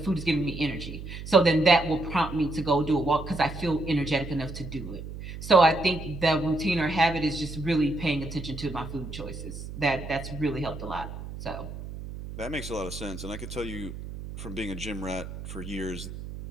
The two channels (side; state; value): right; noise; hum, 10 dB below the sound